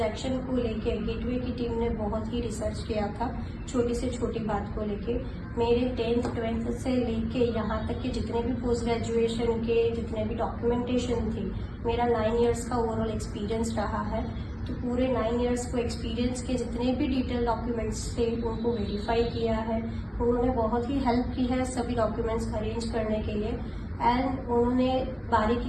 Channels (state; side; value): identical; both; correlation 1.00